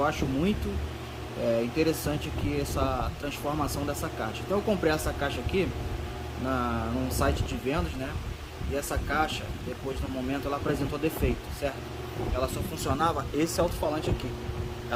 acho muito interessante aqui essa transformação dessa caixa. Então eu comprei essa caixa aqui num site de vendas, né? E essa caixa, depois no momento, ela apresentou defeito, certo? Ela só funcionava esse alto-falante aqui.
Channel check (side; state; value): both; identical; correlation 1.00